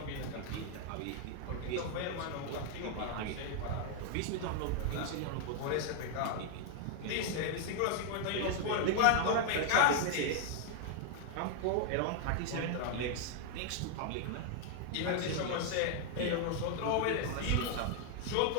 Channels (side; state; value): both; different; correlation 0.00